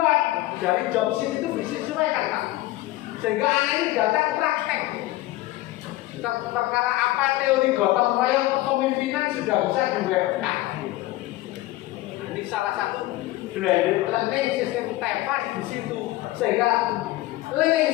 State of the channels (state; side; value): quieter; right; 17.3 dB